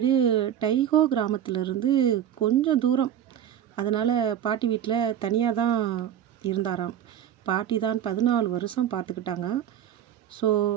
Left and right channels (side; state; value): left; quieter; 10.1 dB